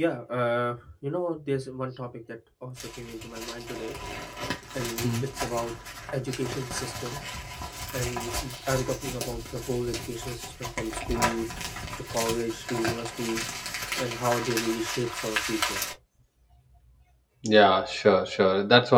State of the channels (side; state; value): both; identical; correlation 1.00